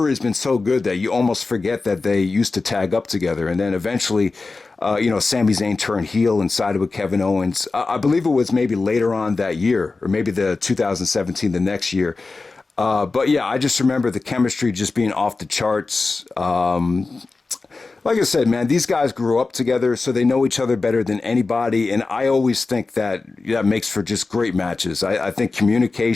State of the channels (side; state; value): right; quieter; 3.8 dB